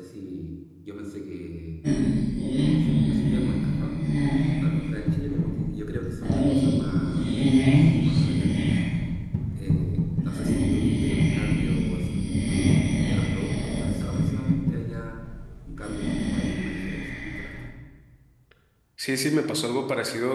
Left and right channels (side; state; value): both; identical; correlation 1.00